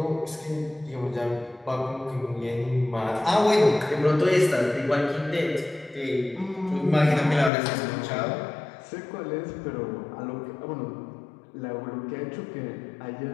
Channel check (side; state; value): right; drops out; at 7.5 s